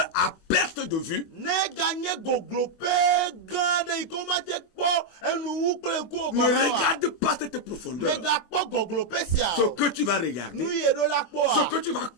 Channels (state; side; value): late; right; 24 ms